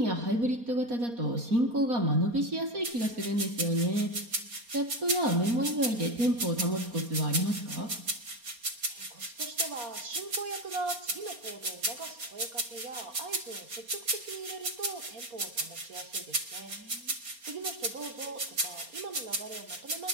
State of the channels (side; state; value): left; late; 4.3 ms